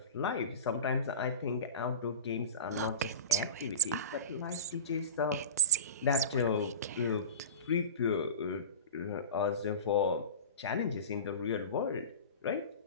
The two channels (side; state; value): both; inverted; correlation -0.33